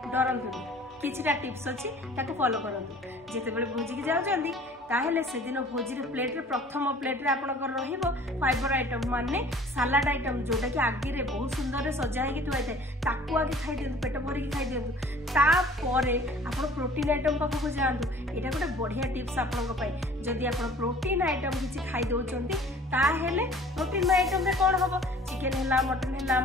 डरतुनि किछिटा टिप्स अच्छी फॉलो करंतु जिते बड़े भोजी की जाउछंती ताहेले से दिन भोजी रे प्लेट रे प्रथम प्लेट रे आपनकर रहिबो फाइबर आइटम माने सलाड आइटम जोटा कि आगे रे बहुत सुंदर रे सजा हेकि थुआ थाए ताकू आगे खाई दियंतु पेट भरी खाई दियंतु तापरे आपण प्रोटीन आइटम पाखु जांतु एटा गोटे बढ़िया टिप्स आपनक पई जदि आपण प्रोटीन आइटम किछि खाई दउचंती ताहेले प्रोटीन आइटम रे कोन हबो चिकन हैला मटन हैला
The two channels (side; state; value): both; normal; correlation 0.49